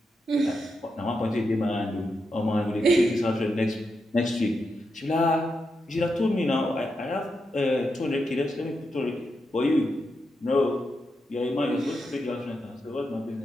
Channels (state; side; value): normal; both; correlation 0.85